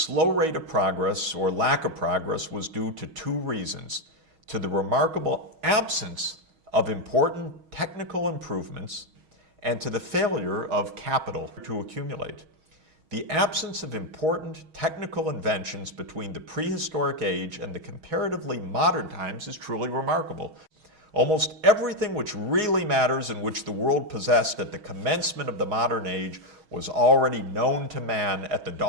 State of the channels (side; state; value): left; late; 6.3 ms